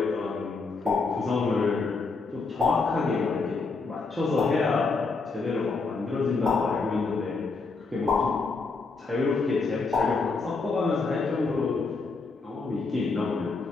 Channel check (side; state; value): right; quieter; 4.2 dB